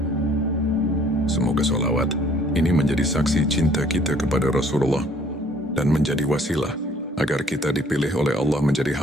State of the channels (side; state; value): both; normal; correlation 0.59